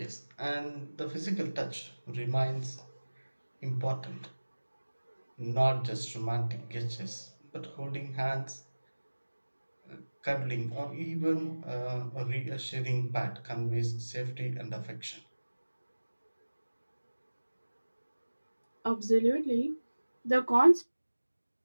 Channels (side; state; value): both; inverted; correlation -1.00